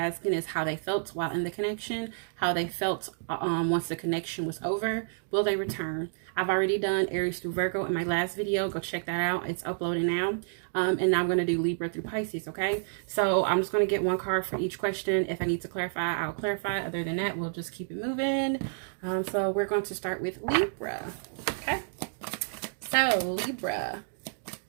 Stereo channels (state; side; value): silent; left; digital silence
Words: is how they felt while in the connection, how they felt once the connection was over, will they return. I've already done Aries through Virgo in my last video. Go check that out. It's uploading now. And now I'm going to do Libra through Pisces, okay? So I'm just going to get one card for each question. If I need to clarify, I'll clarify. Other than that, we'll just keep it moving. So we're going to start with Libra, okay? So, Libra,